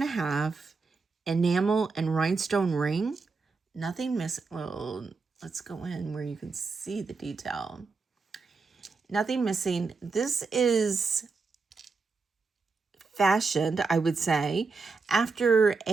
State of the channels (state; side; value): quieter; left; 4.4 dB